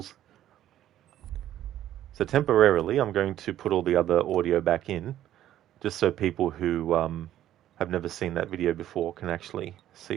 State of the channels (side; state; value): left; quieter; 12.3 dB